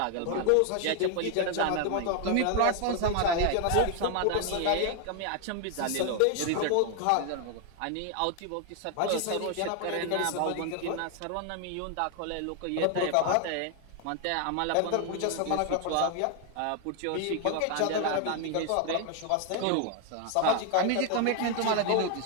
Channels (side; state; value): both; different; correlation 0.00